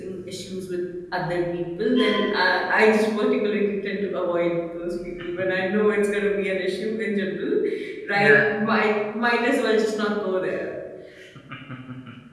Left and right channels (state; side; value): identical; both; correlation 1.00